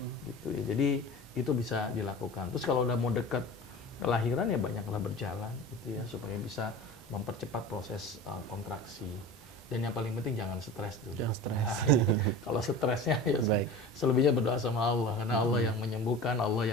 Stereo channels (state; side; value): normal; both; correlation 0.34